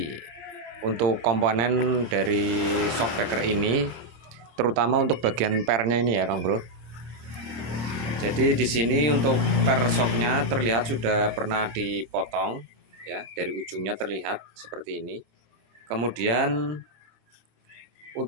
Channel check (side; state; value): left; late; 26 ms